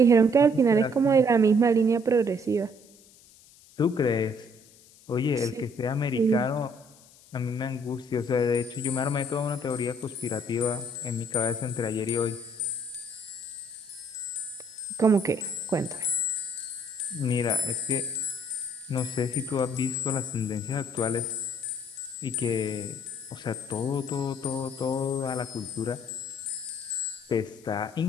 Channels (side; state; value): left; noise; hiss, 25 dB below the sound